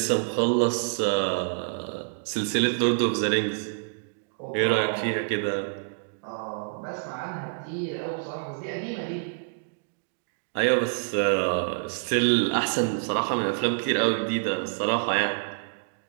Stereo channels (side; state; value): left; silent; digital silence